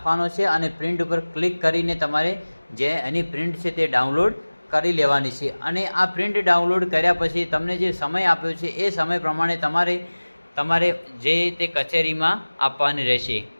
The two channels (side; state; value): both; inverted; correlation -1.00